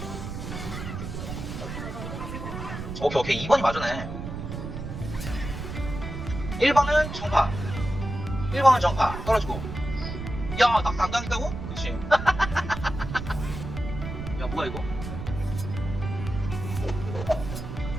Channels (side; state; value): right; noise; rumble, 7 dB below the sound